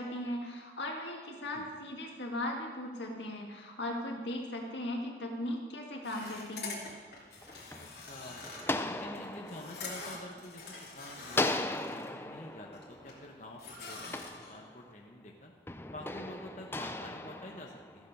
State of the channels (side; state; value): both; normal; correlation 0.36